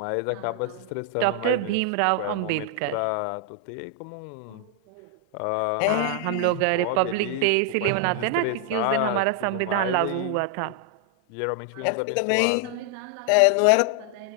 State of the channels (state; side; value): different; both; correlation 0.00